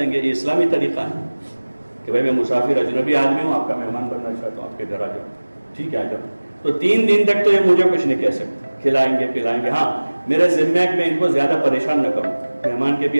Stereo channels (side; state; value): both; inverted; correlation -1.00